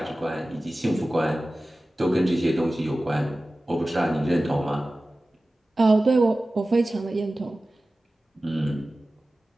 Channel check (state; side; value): normal; both; correlation 0.96